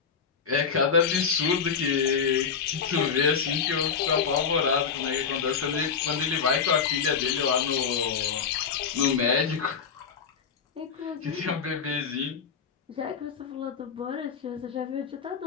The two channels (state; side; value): quieter; right; 6.4 dB